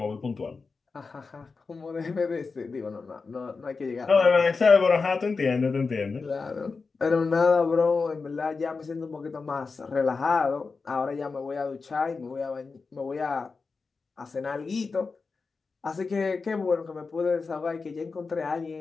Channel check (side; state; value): right; quieter; 4.5 dB